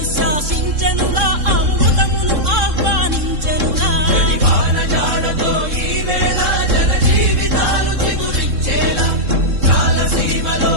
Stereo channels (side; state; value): left; late; 3.7 ms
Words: శాసించెనుగా అమృతమును ఆహ్వానించెనుగా